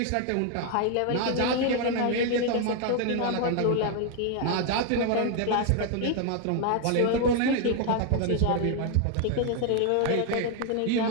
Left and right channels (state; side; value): different; both; correlation 0.01